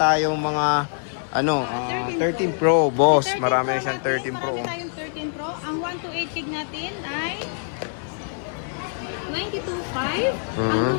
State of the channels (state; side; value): silent; right; 63 dB below the other